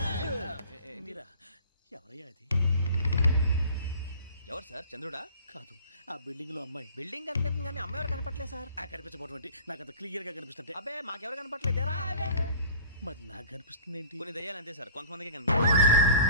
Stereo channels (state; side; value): inverted; both; correlation -0.45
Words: మీరా ఎవరయ్యా అది? ఎవరు సార్? చంద్రుడా? కాదు ఆ బిల్డింగ్ లో అమ్మాయి. బిల్డింగ్ కనిపిస్తుంది కానీ అమ్మ ఎవరు కనపట్లేదు సార్. ఆ కనిపించబోటువంటి నాకు అంత క్లియర్ గా కనిపిస్తుంటే అబ్బే మాకెవరు కనపట్లేదేరా? మరి నాకు కనిపిస్తుంది ఏంటి? కొన్ని దయ్యాలు అంతే సార్, కొంతమందికి కనిపిస్తుంది.